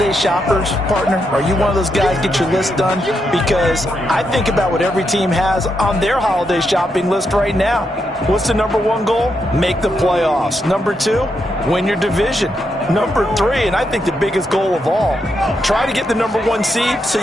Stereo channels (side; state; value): both; normal; correlation 0.82